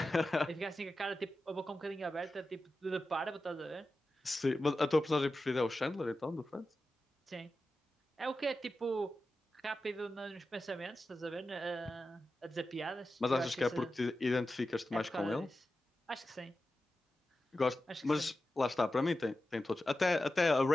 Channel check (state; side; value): normal; both; correlation 0.93